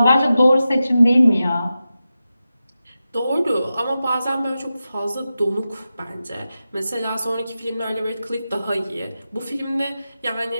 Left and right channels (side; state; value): both; inverted; correlation -0.92